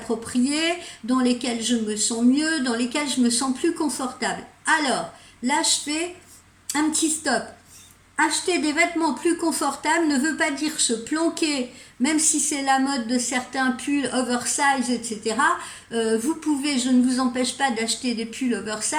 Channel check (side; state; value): both; identical; correlation 1.00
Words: dans lesquels je me sens mieux, dans lesquels je me sens plus confortable. Alors, là, je fais un petit stop. Acheter des vêtements plus confortables ne veut pas dire se planquer, même si c'est la mode de certains pulls oversize, etc. Vous pouvez, je ne vous empêche pas d'acheter des pulls